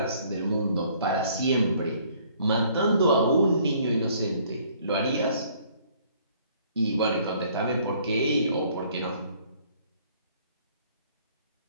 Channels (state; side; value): inverted; both; correlation -0.60